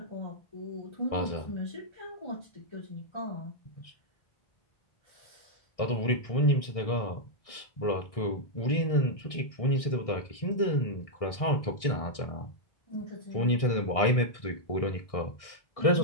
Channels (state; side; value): late; right; 1.6 ms